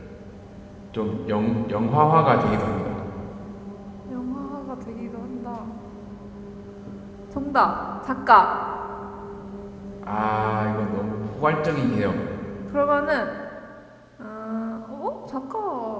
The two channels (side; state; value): both; identical; correlation 1.00